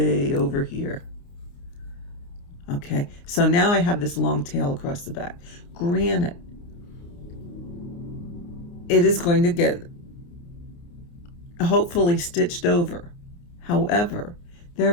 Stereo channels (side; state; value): right; late; 29 ms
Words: over here. Okay, so now I have this long tail across the back. Granted, it is going to get hopefully stitched over. However, there